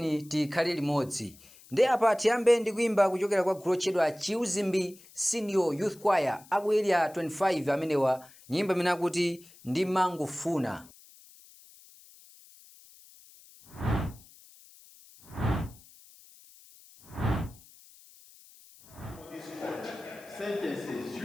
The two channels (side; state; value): left; noise; hiss, 24 dB below the sound